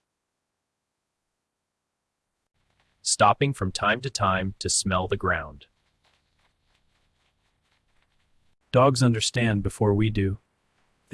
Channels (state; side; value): identical; both; correlation 1.00